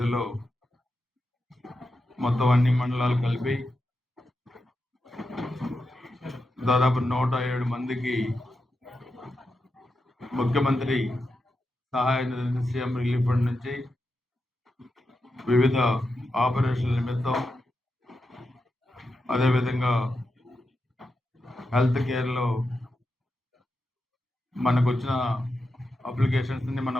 మొత్తం అన్ని మండలాలు కలిపి దాదాపు 107 మందికి ముఖ్యమంత్రి సహాయ నిధి సీఎం రిలీఫ్ ఫండ్ నుంచి వివిధ ఆపరేషన్ల నిమిత్తం, అదేవిధంగా హెల్త్ కేర్లో మనకు వచ్చిన అప్లికేషన్స్ని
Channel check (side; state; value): both; normal; correlation 0.88